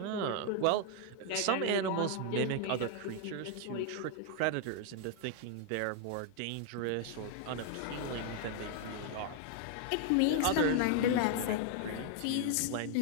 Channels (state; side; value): different; both; correlation 0.00